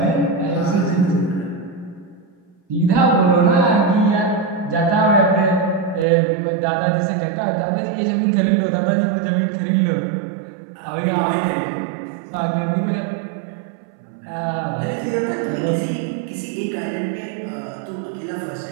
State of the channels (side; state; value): left; drops out; at 6.1 s